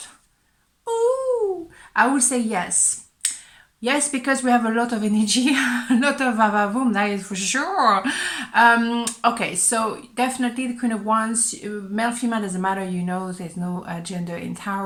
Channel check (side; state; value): both; identical; correlation 1.00